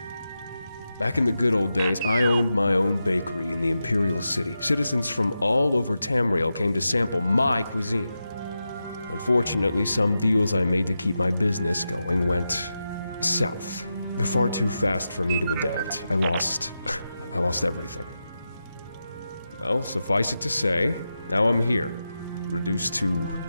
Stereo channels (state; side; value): inverted; both; correlation -0.90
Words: Back in the good old days, I owned my own bakery in the Imperial City. Citizens from all over Tamerial came to sample my cuisine. Unfortunately, some deals I made to keep my business going went south. They're far too fast for me to adapt. I lost everything. Well, suffice it to say, now I'm here, reduced to